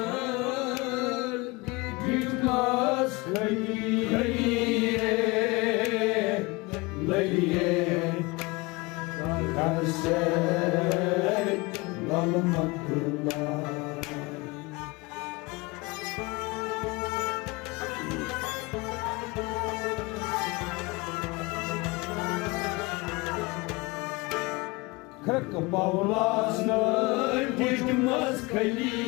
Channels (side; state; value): right; quieter; 24.8 dB